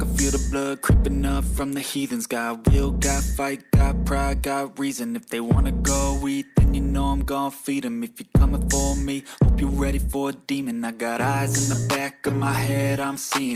feel the blood creeping up from the heathens. Got will, got fight, got pride, got reason. If they wanna go eat, then you know I'm gon' feed them. If you're coming for me, hope you're ready for a demon. I got eyes in the back of my head, I'm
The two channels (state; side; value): identical; both; correlation 1.00